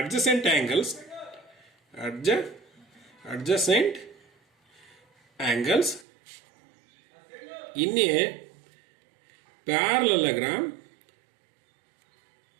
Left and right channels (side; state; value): left; drops out; at 6.1 s